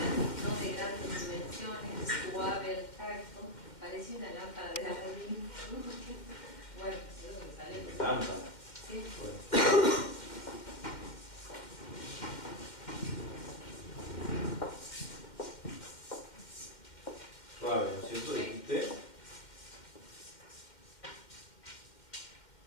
no de grandes dimensiones, suave al tacto, parece una lámpara de Aladín. Bueno, eso es lo que sale. Lámpara. Sí. Bueno. Suave, ¿no es cierto? Dijiste.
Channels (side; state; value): right; late; 2.1 ms